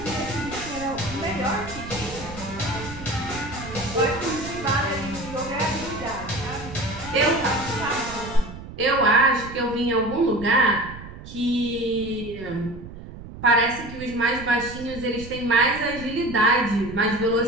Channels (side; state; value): right; noise; rumble, 13 dB below the sound